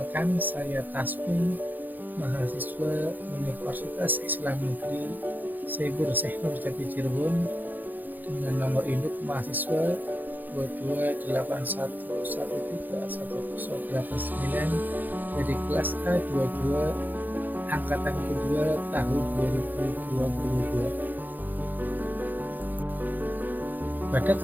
saya Tasmi, mahasiswa Universitas Islam Negeri Syekh Nur Jati Cirebon dengan nomor induk mahasiswa 2281131089 dari kelas A22 angkatan kedua tahun 2022. Pada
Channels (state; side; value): late; left; 0.086 ms